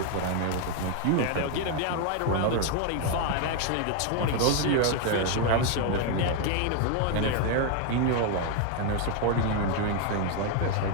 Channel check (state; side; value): different; both; correlation 0.01